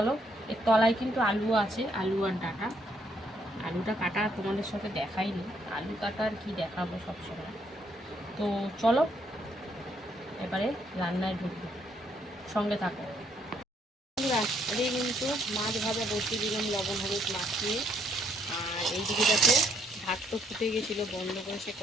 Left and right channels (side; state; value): both; normal; correlation 0.70